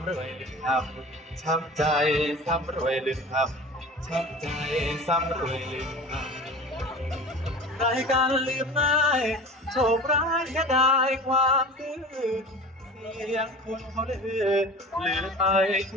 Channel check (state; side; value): normal; both; correlation 0.37